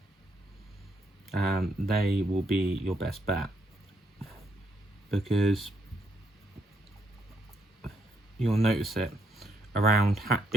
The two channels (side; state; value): both; normal; correlation 0.75